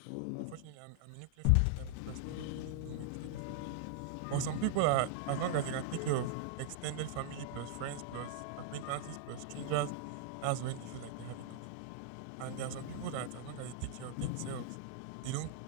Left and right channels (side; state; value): both; different; correlation -0.01